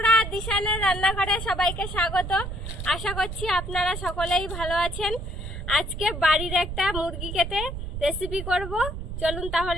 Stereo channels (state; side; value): noise; right; rumble, 7 dB below the sound